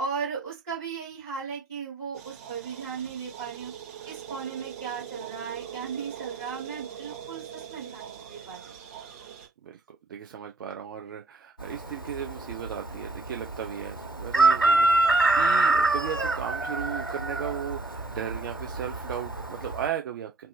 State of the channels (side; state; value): left; quieter; 3.2 dB